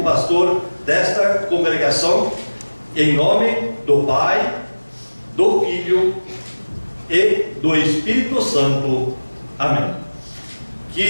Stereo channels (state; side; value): inverted; both; correlation -1.00